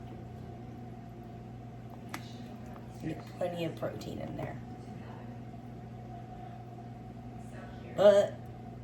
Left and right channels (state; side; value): identical; both; correlation 1.00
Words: Get plenty of protein in there. But